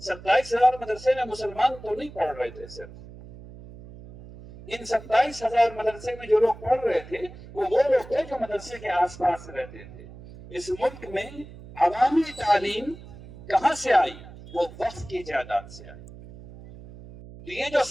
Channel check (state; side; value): noise; right; hum, 17 dB below the sound